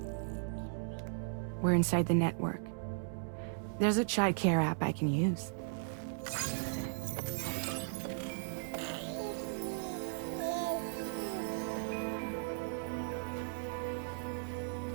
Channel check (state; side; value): silent; left; digital silence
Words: We're inside the network. There's a child care app I can use.